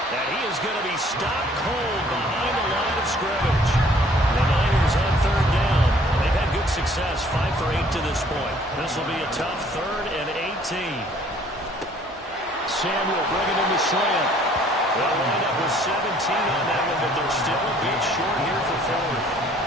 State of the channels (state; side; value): normal; both; correlation 0.58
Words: And he is going to be stopped cold behind the line of scrimmage. The Niners on 3rd down. They've had good success, 5 for 8 to this point. This will be a tough 3rd and 18. Samuel bringing in the slant. They'll wind up with 17 on that one, but they're still a bit short here for 4th.